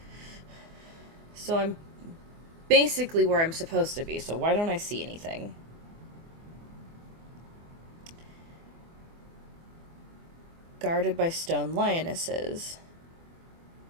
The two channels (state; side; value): late; left; 24 ms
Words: So I'm basically where I'm supposed to be, so why don't I see anything? Guarded by stone lionesses.